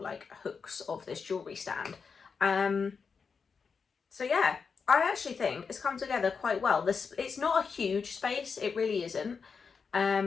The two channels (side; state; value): right; quieter; 5.5 dB